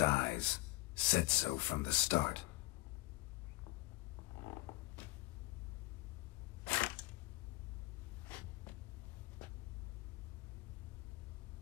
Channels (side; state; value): right; quieter; 19.3 dB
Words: Said so from the start.